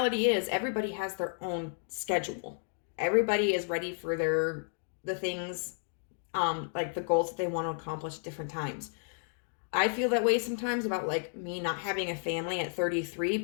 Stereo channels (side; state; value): right; silent; digital silence